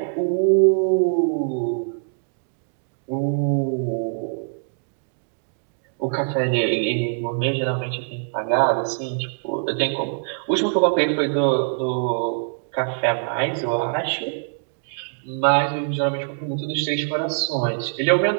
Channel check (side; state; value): left; silent; digital silence